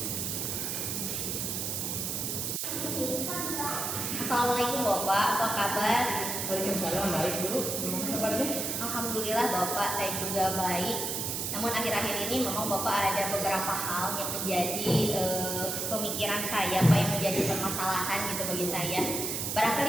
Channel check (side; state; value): right; noise; hiss, 2 dB below the sound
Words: Assalamualaikum Bapak, apa kabar? Waalaikumsalam, baik dulu. Gimana kabarnya? Alhamdulillah Bapak, saya juga baik. Namun akhir-akhir ini memang Bapak ada beberapa hal yang menjadi pemikiran saya, Pak, yang menjadi permasalahan gitu bagi saya.